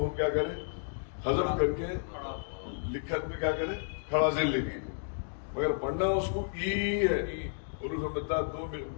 ہم کیا کریں، حذف کر کے لکھت میں کیا کریں، کھڑا زیر لے لیے. مگر پڑھنا اس کو ای ہے. حروف مدہ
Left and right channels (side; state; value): right; silent; digital silence